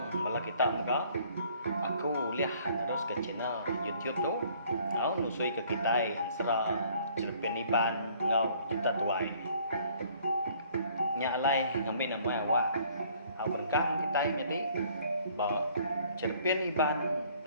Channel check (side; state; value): both; inverted; correlation -0.59